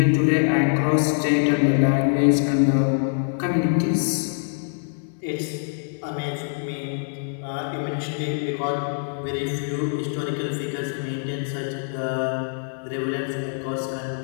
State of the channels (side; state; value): right; silent; digital silence